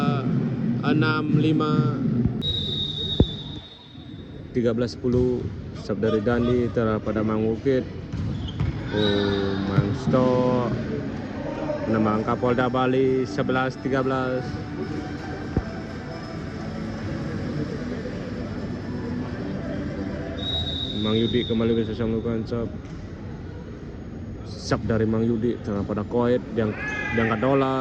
6-5. 13-10. Serve dari Dandi terhadap pada Mang Bukit. Mangsto menambah angka Polda Bali 11-13. Mang Yudi kembali bersiap melakukan serve. Serve dari Mang Yudi terhadap pada Koet, diangkat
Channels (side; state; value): both; identical; correlation 1.00